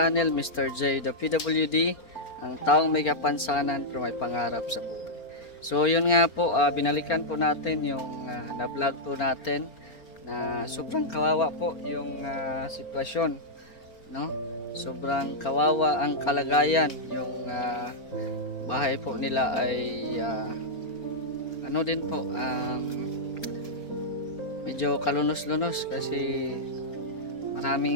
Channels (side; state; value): right; late; 4.4 ms